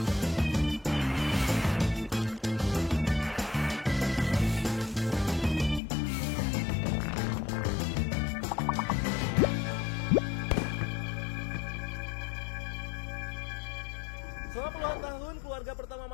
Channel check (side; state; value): right; drops out; at 5.8 s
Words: Selama puluhan tahun, keluarga pertama